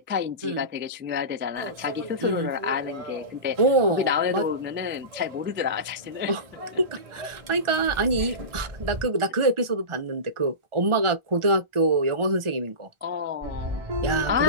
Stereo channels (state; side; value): late; left; 1.4 ms